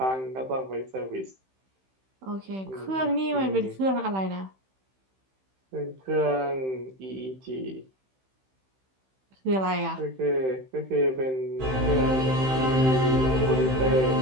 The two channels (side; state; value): left; late; 15 ms